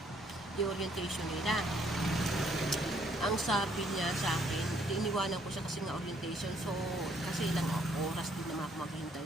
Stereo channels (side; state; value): both; normal; correlation 0.67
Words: the orientation nila. Ang sabi niya sa akin, iniwanan ko siya kasi nga orientation, so kasi ilang oras din naman ako maghihintay